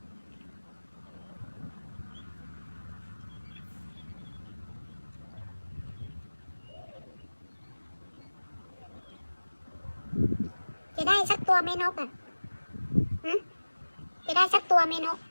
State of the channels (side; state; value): both; inverted; correlation -1.00